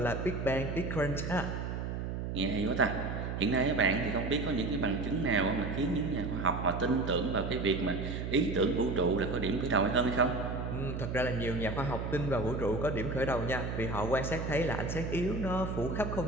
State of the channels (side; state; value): right; noise; hum, 4 dB below the sound